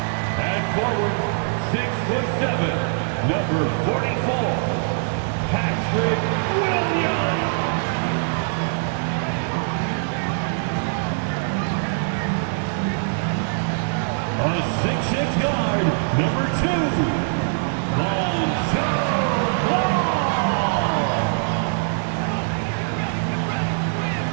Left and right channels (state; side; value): silent; left; 64 dB below the other